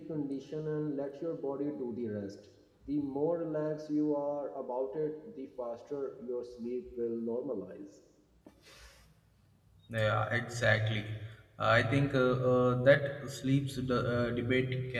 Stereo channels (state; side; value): identical; both; correlation 1.00